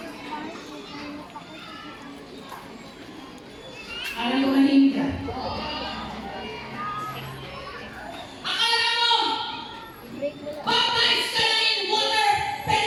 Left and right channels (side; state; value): both; identical; correlation 1.00